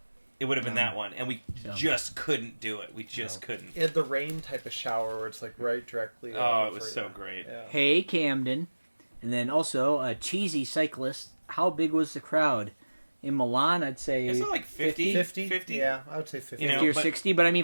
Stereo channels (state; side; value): inverted; both; correlation -1.00